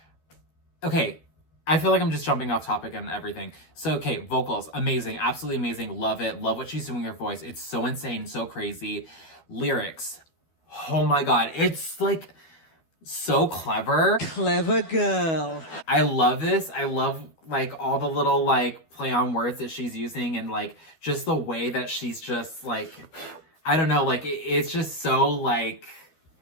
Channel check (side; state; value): right; late; 12 ms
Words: Okay, I feel like I'm just jumping off topic and everything. So, okay, vocals, amazing. Absolutely amazing. Love it. Love what she's doing with her voice. It's so insane, so crazy. Lyrics. Oh my God. It's, like, so clever. Clever girl. I love this. I love, like, all the little, like, play on words that she's using and, like, just the way that she's just, like, I don't know, like, it's just so, like,